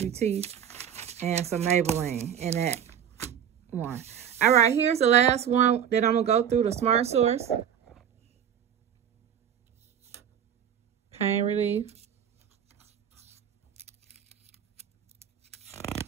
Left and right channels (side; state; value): left; quieter; 9.0 dB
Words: and some Maybelline in that one. All right, here's the last one that I'm going to go through, the Smart Source. Pain relief.